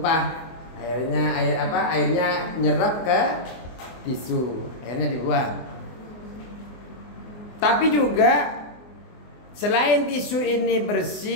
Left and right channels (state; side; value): late; right; 24 ms